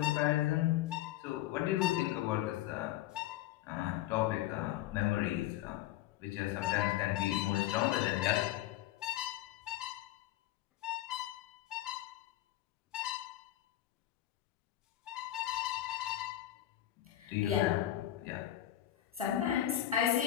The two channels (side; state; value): right; quieter; 13.7 dB